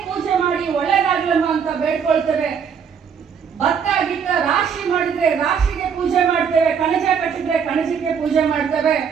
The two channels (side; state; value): left; quieter; 7.0 dB